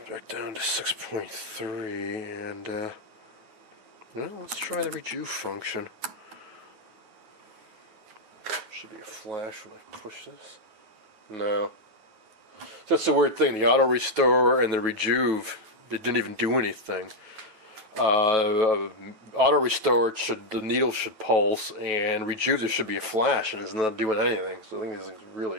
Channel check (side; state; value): left; late; 9.3 ms